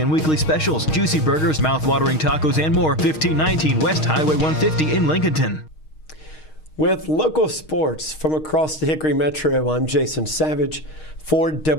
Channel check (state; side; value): late; right; 6.4 ms